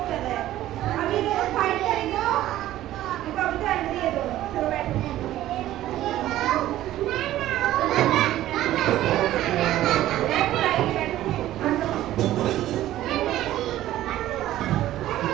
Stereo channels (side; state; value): left; quieter; 14.0 dB